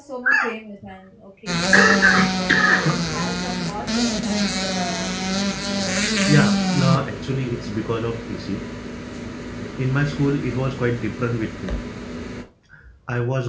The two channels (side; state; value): both; identical; correlation 1.00